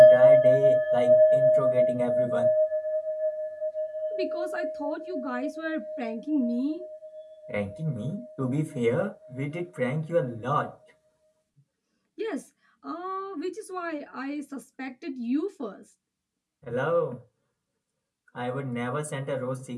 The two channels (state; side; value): identical; both; correlation 1.00